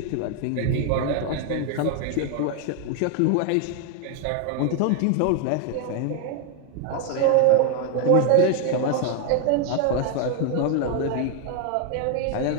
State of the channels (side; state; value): both; different; correlation 0.01